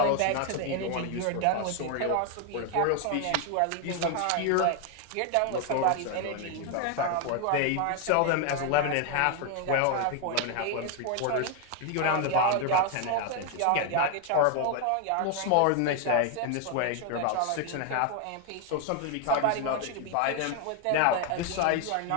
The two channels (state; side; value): different; both; correlation 0.01